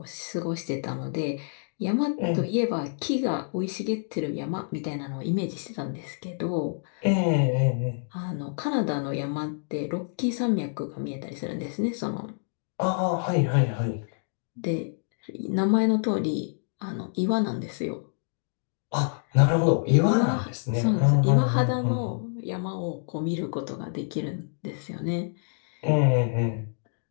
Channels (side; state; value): right; silent; digital silence